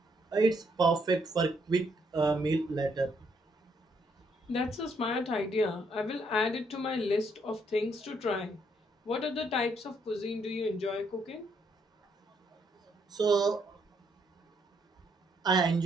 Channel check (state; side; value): normal; both; correlation 0.72